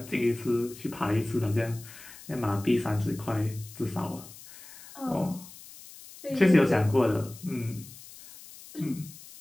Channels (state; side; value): noise; left; hiss, 18 dB below the sound